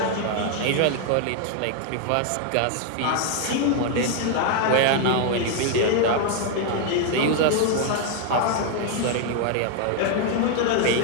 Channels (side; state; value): both; different; correlation 0.00